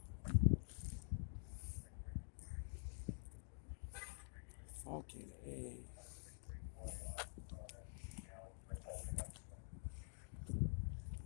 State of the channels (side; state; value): right; silent; digital silence